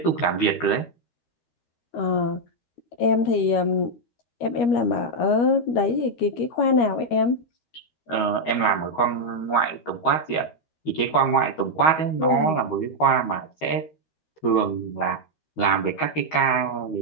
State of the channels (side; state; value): right; late; 13 ms